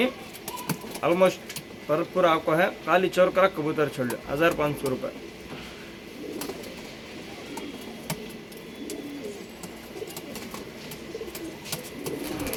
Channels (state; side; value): identical; both; correlation 1.00